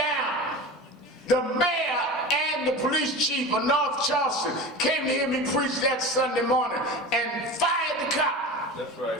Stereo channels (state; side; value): normal; both; correlation 0.31